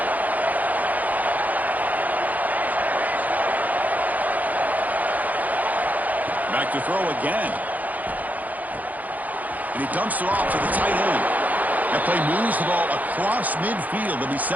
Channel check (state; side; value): late; left; 0.079 ms